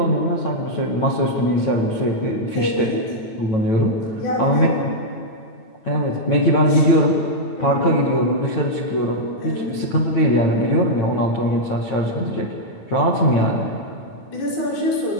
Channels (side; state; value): right; late; 9.0 ms